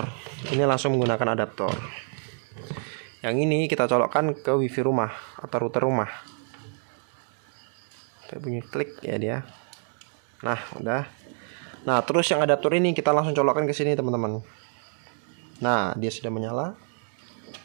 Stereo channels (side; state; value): left; silent; 59 dB below the other